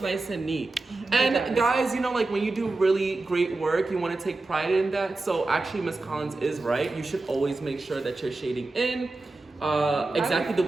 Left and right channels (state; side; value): quieter; left; 3.2 dB